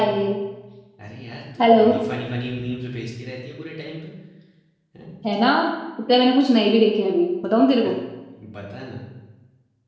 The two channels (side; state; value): both; identical; correlation 1.00